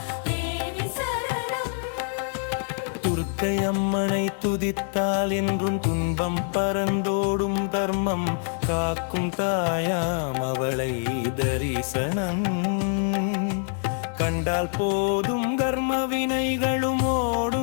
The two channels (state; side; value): silent; right; 61 dB below the other